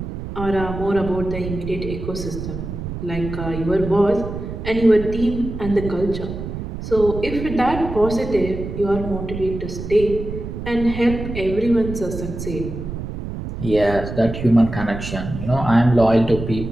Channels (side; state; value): right; noise; rumble, 7 dB below the sound